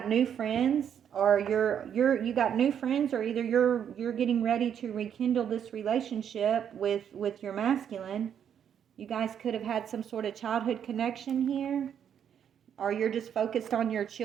new friends, or you got new friends, or either you're getting ready to rekindle this relationship with your masculine. You guys could have had some sort of childhood connection here, or you're just focused on your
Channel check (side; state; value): left; quieter; 8.7 dB